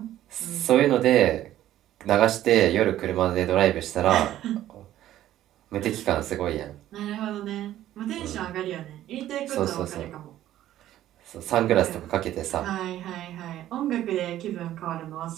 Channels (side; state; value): left; quieter; 13.0 dB